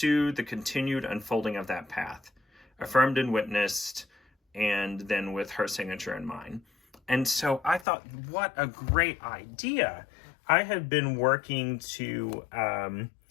the continued unfolding of that path, affirmed and witnessed, and then with her signature in mind. And so I thought, what a great idea. I have been working to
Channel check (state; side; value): drops out; right; at 7.9 s